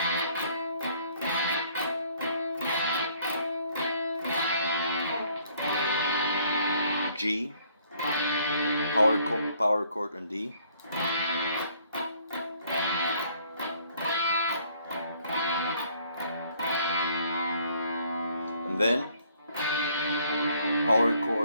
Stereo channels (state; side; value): inverted; both; correlation -0.62